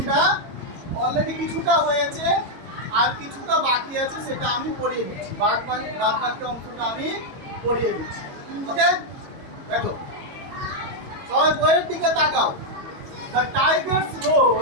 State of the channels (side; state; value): left; late; 22 ms